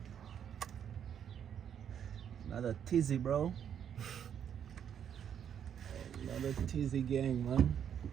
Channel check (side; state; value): left; quieter; 8.7 dB